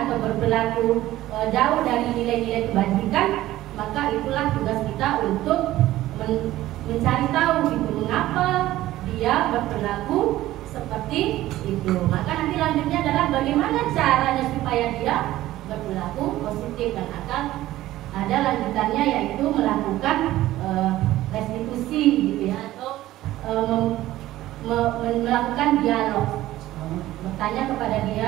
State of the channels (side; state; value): left; quieter; 15.3 dB